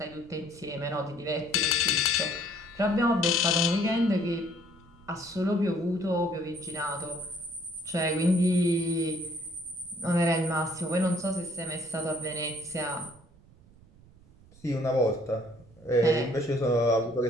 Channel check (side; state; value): right; noise; rumble, 25 dB below the sound